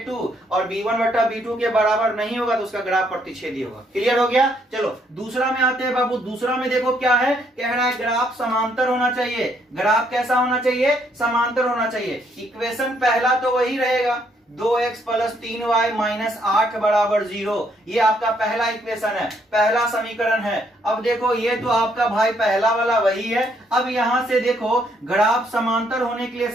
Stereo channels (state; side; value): normal; both; correlation 0.71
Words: और b1 बटा b2 के बराबर नहीं होगा तो उसका ग्राफ प्रतिच्छेदी होगा। क्लियर हो गया? चलो दूसरा में आते हैं बाबू। दूसरा में देखो क्या है, कह रहा है ग्राफ समांतर होना चाहिए। ग्राफ कैसा होना चाहिए? समांतर होना चाहिए। इक्वेशन पहला तो वही रहेगा, 2x प्लस 3y माइनस 8 बराबर 0, ये आपका पहला इक्वेशन है, पहला समीकरण है। अब देखो ये तो आपका भाई पहला वाला वही है। अब यहां से देखो ग्राफ समांतर होने के लिए